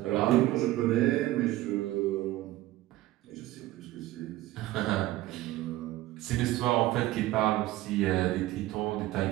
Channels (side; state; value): left; quieter; 16.6 dB